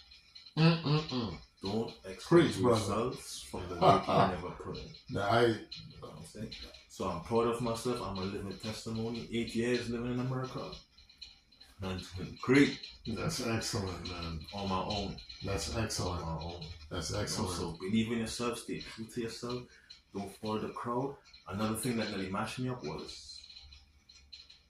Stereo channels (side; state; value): both; identical; correlation 1.00